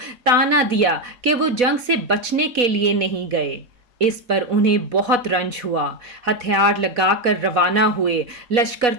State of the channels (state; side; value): late; left; 4.1 ms